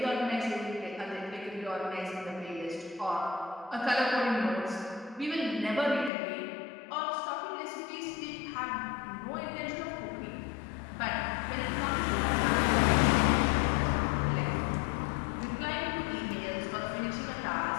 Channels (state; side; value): drops out; right; at 6.1 s